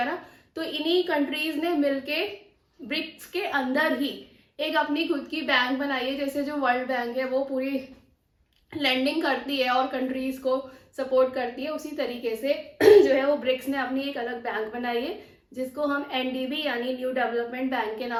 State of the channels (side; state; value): both; identical; correlation 1.00